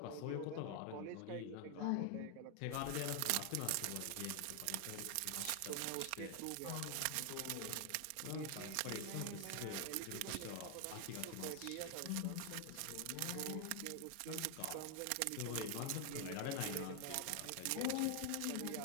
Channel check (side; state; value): both; different; correlation 0.00